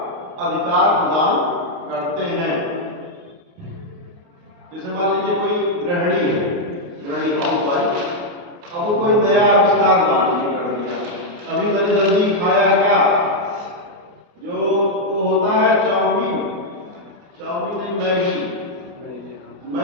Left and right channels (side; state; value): left; late; 29 ms